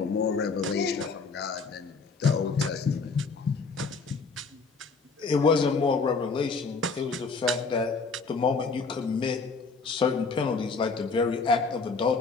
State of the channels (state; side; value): quieter; right; 4.5 dB